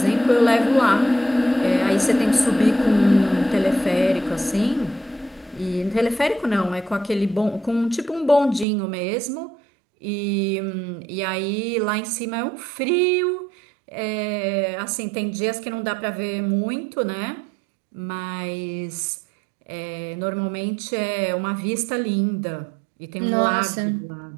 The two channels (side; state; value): left; drops out; at 8.7 s